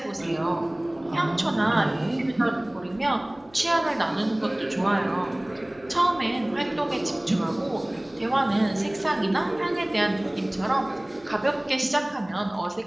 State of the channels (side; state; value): left; noise; hum, 27 dB below the sound